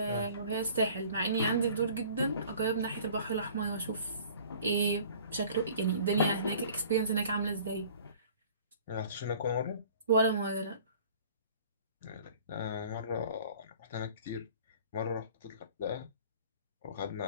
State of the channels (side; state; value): both; inverted; correlation -0.49